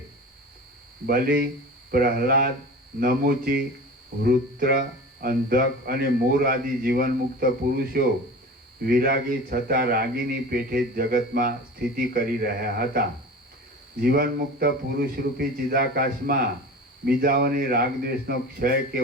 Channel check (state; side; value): normal; both; correlation 0.35